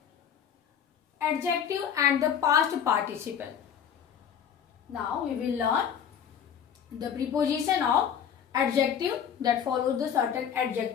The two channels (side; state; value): right; quieter; 8.3 dB